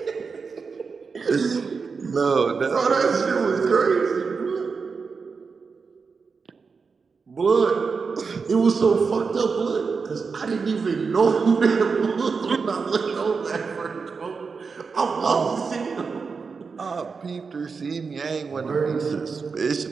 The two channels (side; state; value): left; quieter; 5.1 dB